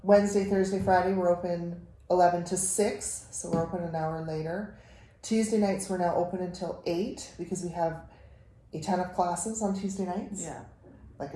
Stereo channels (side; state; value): both; identical; correlation 1.00